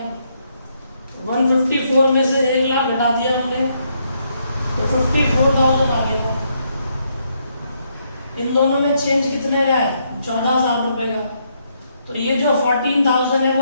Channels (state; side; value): inverted; both; correlation -0.75